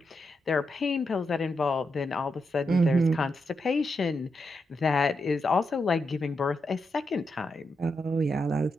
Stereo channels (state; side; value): normal; both; correlation 0.84